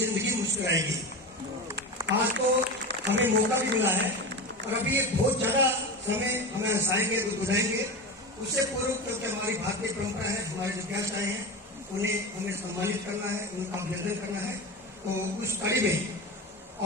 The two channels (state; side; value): normal; both; correlation 0.25